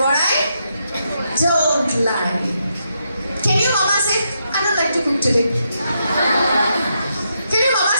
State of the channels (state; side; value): inverted; both; correlation -0.81